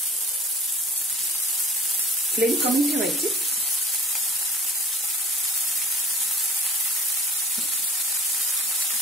फ्लेम कमी ठेवायची।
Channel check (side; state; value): both; normal; correlation 0.45